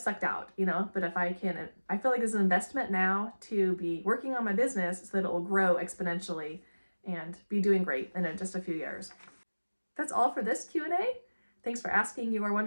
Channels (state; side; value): inverted; both; correlation -1.00